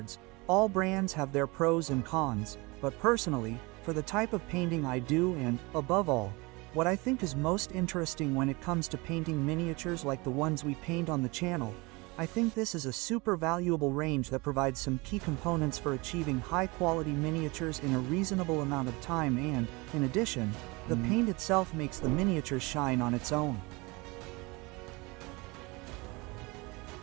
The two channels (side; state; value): left; quieter; 25.4 dB